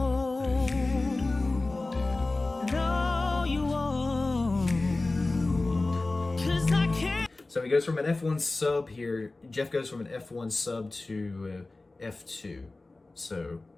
no, you won't. 'Cause I can't. So he goes from an F1 sub here. Jeff goes from an F1 sub to F2. So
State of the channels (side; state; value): right; quieter; 3.2 dB